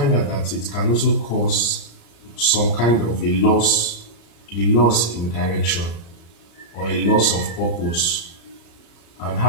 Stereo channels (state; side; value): late; right; 34 ms